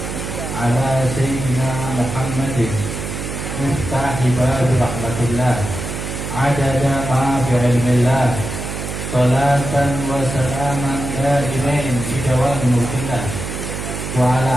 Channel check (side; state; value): right; noise; hum, 6 dB below the sound